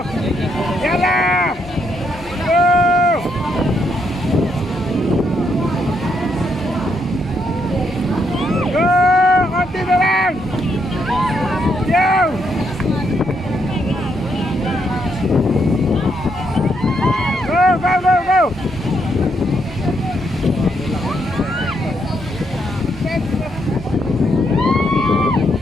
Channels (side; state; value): both; normal; correlation 0.76